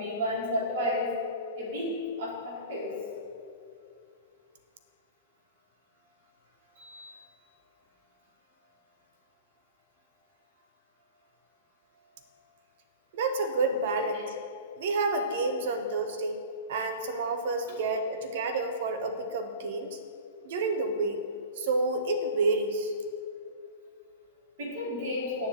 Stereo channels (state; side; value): inverted; both; correlation -0.38